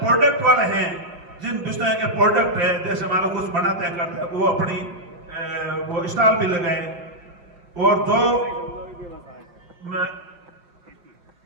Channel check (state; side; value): late; left; 5.9 ms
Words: वाले हैं जिन विषय के प्रोडक्ट है, जैसे मान लो कुछ बनाते हैं करते हैं, वो अपनी वो स्टॉल भी लगाए, और जो